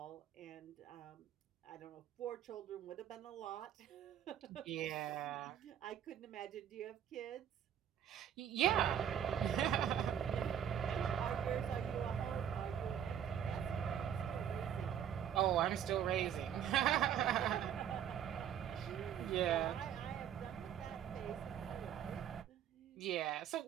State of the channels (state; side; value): quieter; left; 9.3 dB